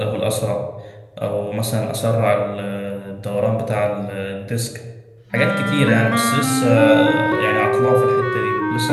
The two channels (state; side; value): identical; both; correlation 1.00